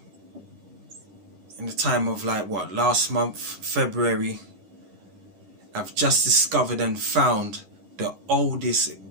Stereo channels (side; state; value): left; late; 11 ms